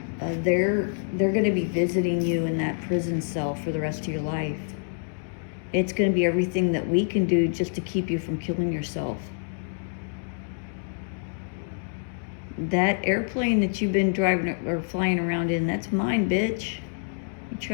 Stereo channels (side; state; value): right; silent; digital silence